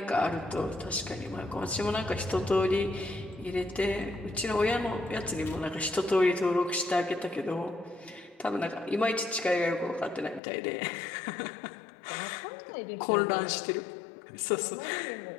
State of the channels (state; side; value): drops out; right; at 10.4 s